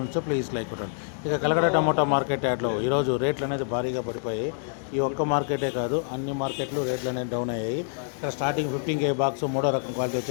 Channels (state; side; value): silent; right; digital silence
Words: ప్లీజ్ లైక్ కొట్టండి. ఇక కలకడ టమాటో మార్కెట్ యాడ్లో ఈరోజు రేట్లు అనేది భారీగా పడిపోయాయి. ఈ ఒక్క మార్కెటే కాదు, అన్ని మార్కెట్లు రేట్లు అనేది డౌన్ అయ్యాయి. ఇక్కడ స్టార్టింగ్ 15K బాక్స్ మూడో రకం క్వాలిటీ